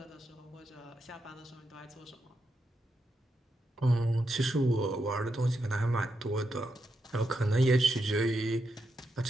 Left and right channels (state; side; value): normal; both; correlation 0.84